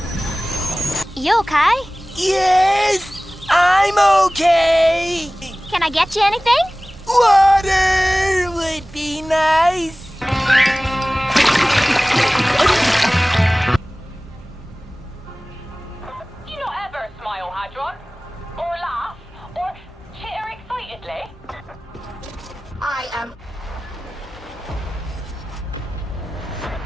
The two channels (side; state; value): both; normal; correlation 0.98